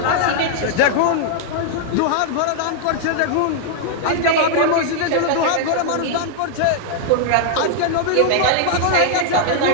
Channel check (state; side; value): different; both; correlation -0.01